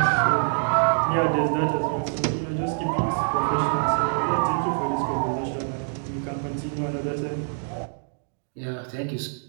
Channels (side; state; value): left; silent; digital silence